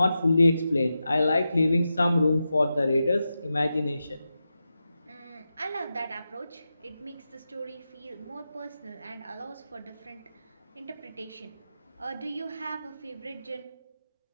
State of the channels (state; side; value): inverted; both; correlation -0.90